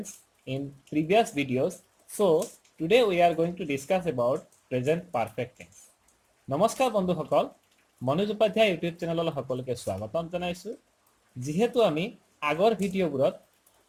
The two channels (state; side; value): identical; both; correlation 1.00